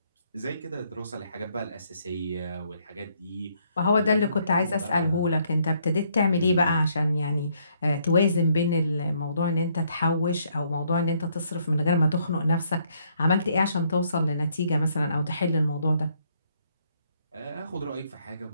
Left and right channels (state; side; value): inverted; both; correlation -0.70